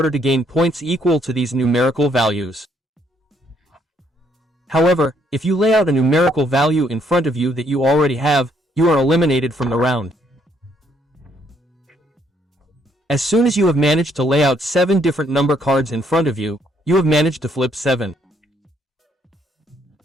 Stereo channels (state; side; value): normal; both; correlation 0.70